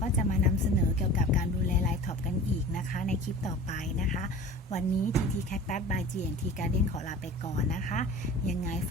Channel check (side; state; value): both; normal; correlation 0.39